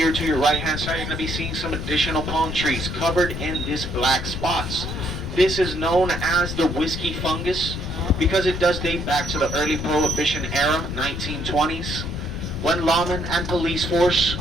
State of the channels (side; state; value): left; noise; rumble, 5 dB below the sound